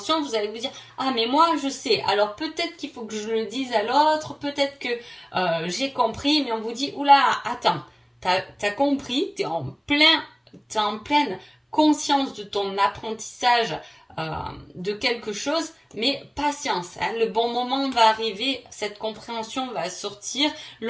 vous allez vous dire, ah mais moi je sais, alors peut-être qu'il faut que je le dise à l'autre, peut-être que j'ai compris, mais on vous dit, oula, attends, t'as compris, t'es en pleine conscience de ton apprentissage de quelque chose, mais patience, hein, le bon moment va arriver, cette compréhension va sortir,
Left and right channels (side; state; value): both; identical; correlation 1.00